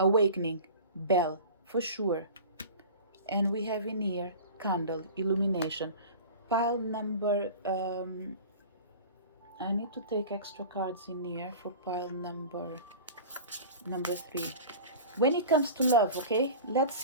bell, for sure. And we have in here candle illumination. Pile number I need to take extra cards in here for pile number 3. When it comes to love, okay, let's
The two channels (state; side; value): inverted; both; correlation -0.36